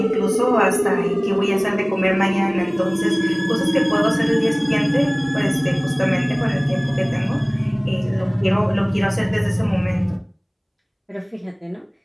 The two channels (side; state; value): both; identical; correlation 1.00